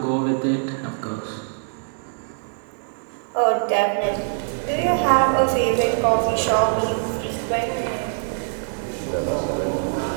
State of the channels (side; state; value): left; silent; 60 dB below the other